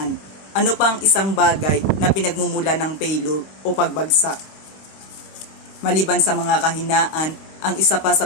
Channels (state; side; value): late; right; 26 ms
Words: ano pa ang isang bagay na pinagmumula ng failure o pagbagsak? Maliban sa mga kahinaan, ang isa pa sa